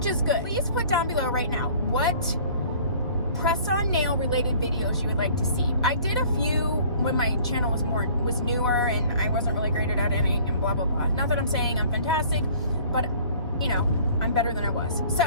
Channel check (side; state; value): both; inverted; correlation -0.51